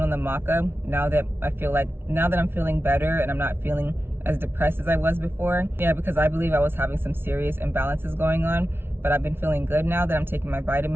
on the maca now that I'm feeling better and I'm not feeling as depressed as I was before. Yeah, because I believe I was having some serious imbalances going on, but I've been feeling good now that I'm taking my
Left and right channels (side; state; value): left; late; 0.11 ms